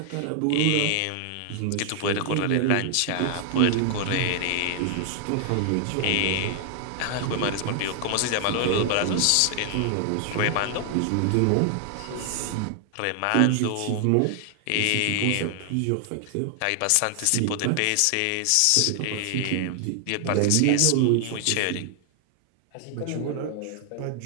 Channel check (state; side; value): different; both; correlation 0.00